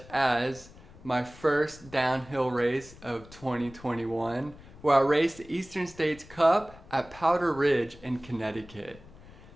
as my first downhill race of 2021, where I raced the Eastern States Cup at Powder Ridge in Connecticut,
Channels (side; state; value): left; noise; rumble, 20 dB below the sound